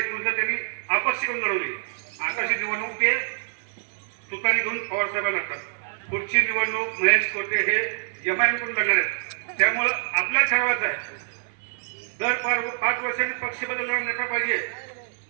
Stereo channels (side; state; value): left; silent; digital silence